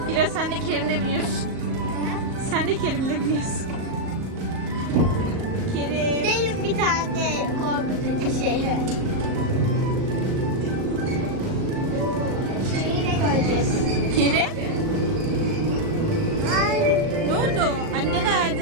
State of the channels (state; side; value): late; left; 38 ms